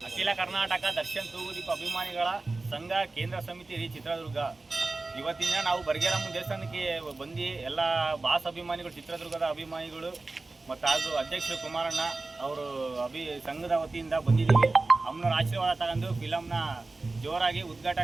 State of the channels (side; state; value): left; quieter; 3.4 dB